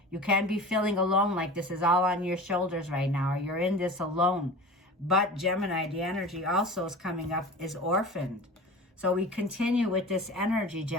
You can be feeling alone, like this is all on your shoulders right now, or you're in this alone. But Gemini, the energy also is coming up is orphaned. So we continue with this energy,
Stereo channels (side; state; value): both; normal; correlation 0.36